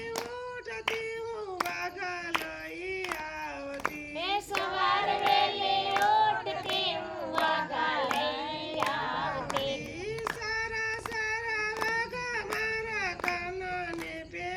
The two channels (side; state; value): both; identical; correlation 1.00